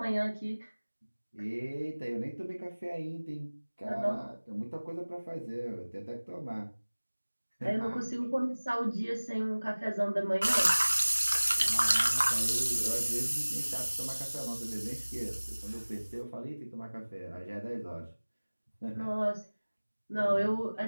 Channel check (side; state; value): both; inverted; correlation -1.00